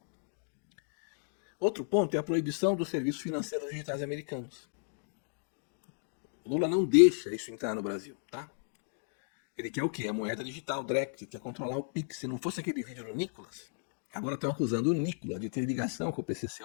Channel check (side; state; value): right; silent; digital silence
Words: Outro ponto é a proibição dos serviços financeiros digitais americanos. O Lula não deixa isso entrar no Brasil, tá? Ele quer o quê? A moeda digital, direct, quer controlar o Pix. Se não fosse aquele vídeo do Nicolas, agora estão acusando o Nicolas de ter ligação com o PCC.